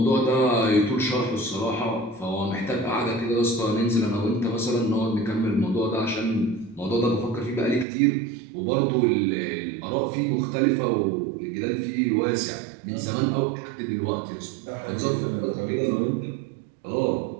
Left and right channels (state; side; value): drops out; left; at 7.9 s